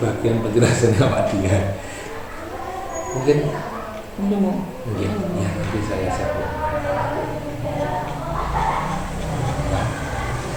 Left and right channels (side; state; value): both; identical; correlation 1.00